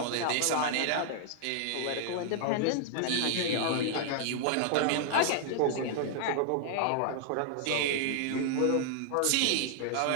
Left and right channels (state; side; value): different; both; correlation 0.00